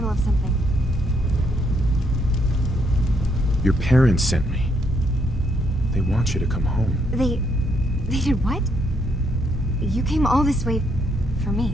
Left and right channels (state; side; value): normal; both; correlation 0.73